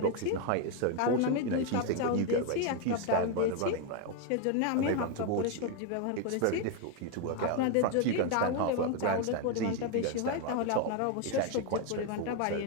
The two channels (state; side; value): different; both; correlation 0.01